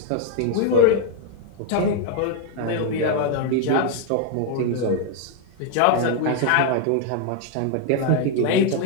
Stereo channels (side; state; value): both; different; correlation 0.00